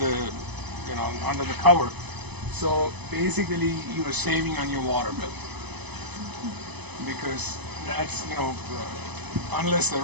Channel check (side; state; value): left; late; 0.99 ms